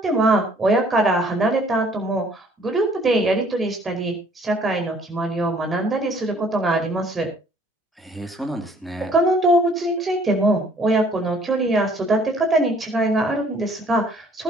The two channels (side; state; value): both; normal; correlation 0.59